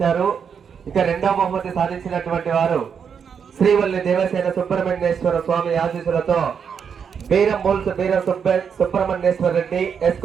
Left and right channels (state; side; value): quieter; left; 7.0 dB